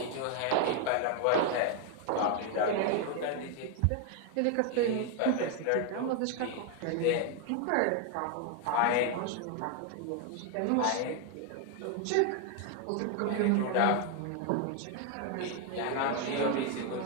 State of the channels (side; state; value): both; different; correlation 0.01